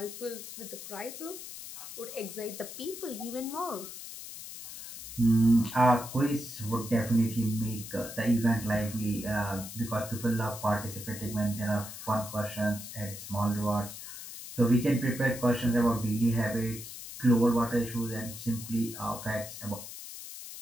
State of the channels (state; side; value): noise; left; hiss, 11 dB below the sound